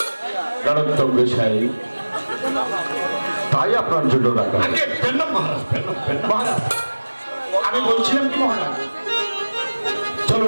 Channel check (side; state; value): both; inverted; correlation -1.00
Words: নরোত্তম গোসাই, তাই আপনার জন্য রাখা। আগে পেন মহারাজ, মহারাজ আমি বলছিলাম কি মহারাজ,